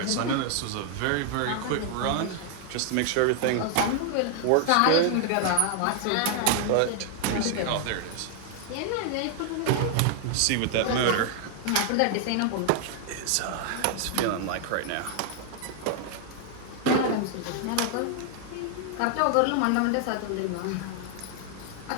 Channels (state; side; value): different; both; correlation 0.00